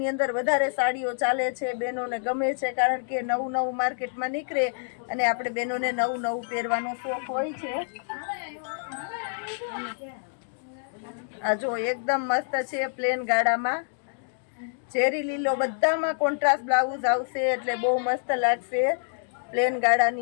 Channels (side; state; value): right; silent; digital silence